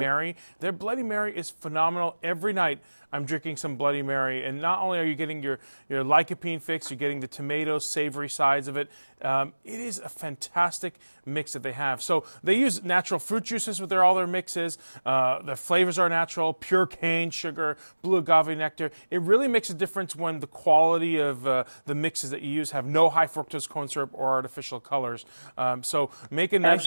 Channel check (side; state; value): both; inverted; correlation -1.00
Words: Their Bloody Mary is phenomenal. Every night I'm drinking some Bloody Mary, and not only are you getting your lycopene fix, you're getting the tomato savory sides of it. It is a fantastic mix that they have. So they use natural fruit juices with all their mixes. The flavors are natural, pure cane sugar, blue agave nectar. It really makes a difference when the quality of the mixes that you use have no high fructose corn syrup or artificial colors. So make a nice,